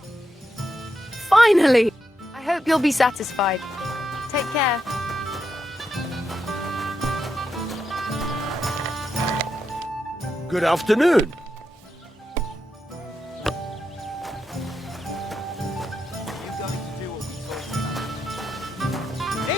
Finally! I hope you'll be satisfied. Take care. Good afternoon.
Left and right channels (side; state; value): both; normal; correlation 0.84